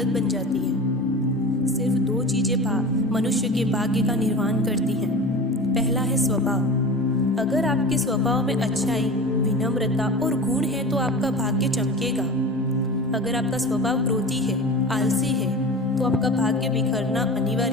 बन जाती है। सिर्फ दो चीजें मनुष्य के भाग्य का निर्माण करती हैं। पहला है स्वभाव। अगर आपके स्वभाव में अच्छाई, विनम्रता और गुण है तो आपका भाग्य चमकेगा। अगर आपका स्वभाव क्रोधी है, आलसी है, तो आपका भाग्य बिखरना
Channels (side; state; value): both; normal; correlation 0.33